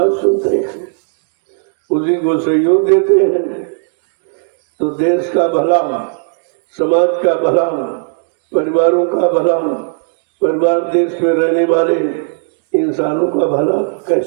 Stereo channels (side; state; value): left; silent; digital silence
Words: सुनते हैं, उसी को सहयोग देते हैं, तो देश का भला, समाज का भला, परिवारों का भला, परिवार देश में रहने वाले इंसानों का भला